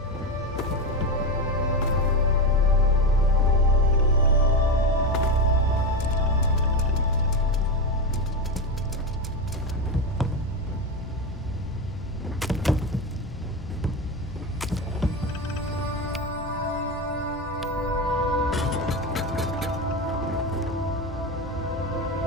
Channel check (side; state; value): both; normal; correlation 0.17